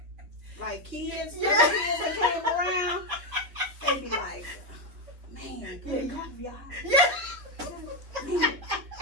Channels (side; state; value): left; late; 3.9 ms